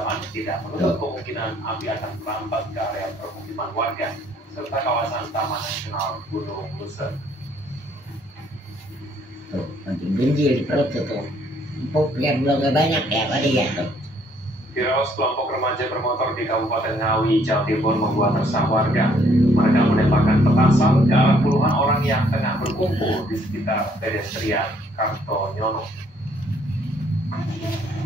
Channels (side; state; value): both; normal; correlation 0.65